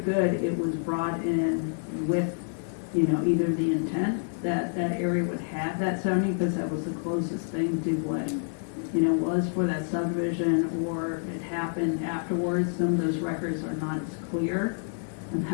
it was brought in with, you know, either the intent that that area would have that zoning because that was the closest thing to what, you know, was for that subdivision, or it happened afterwards. Some of those records are not as clear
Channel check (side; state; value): right; silent; digital silence